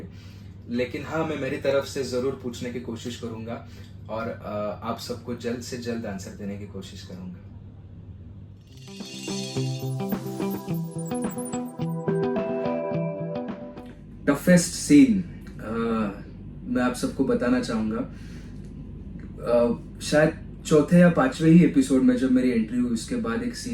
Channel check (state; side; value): identical; both; correlation 1.00